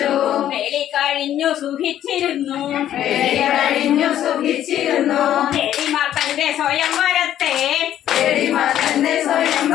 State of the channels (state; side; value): quieter; right; 11.4 dB